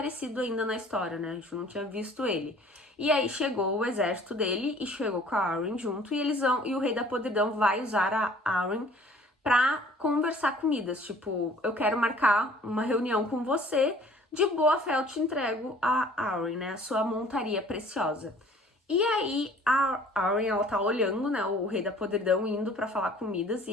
ainda na história, né? A gente não tinha visto ele. E aí chegou o exército dele e chegou com a Arryn junto. E o rei da podridão vai usar a Arryn pra conversar com Midas. Tipo, eu quero marcar uma reunião com você. De boa fé eu te entrego a Arryn, né? A sua montaria preciosa. E aí a Arryn, ela tá olhando, né, o rei da podridão indo pra falar com Midas e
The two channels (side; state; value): both; normal; correlation 0.52